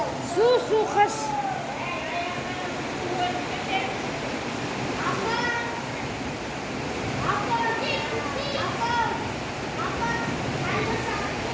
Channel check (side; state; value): both; identical; correlation 1.00